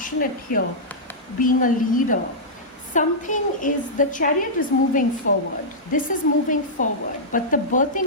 here, being a leader. Something is, the Chariot is moving forward. This is moving forward, but the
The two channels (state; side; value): normal; both; correlation -0.11